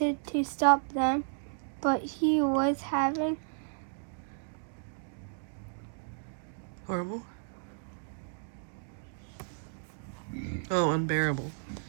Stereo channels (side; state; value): left; silent; digital silence